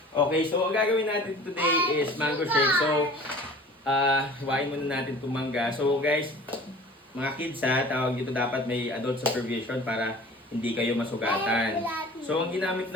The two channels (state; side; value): normal; both; correlation 0.44